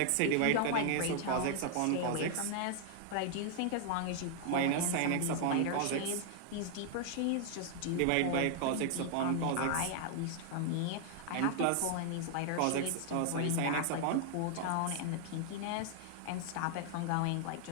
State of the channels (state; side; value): different; both; correlation 0.00